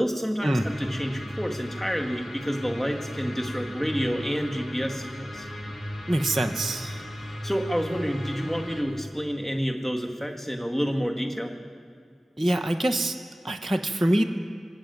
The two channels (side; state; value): both; normal; correlation 0.97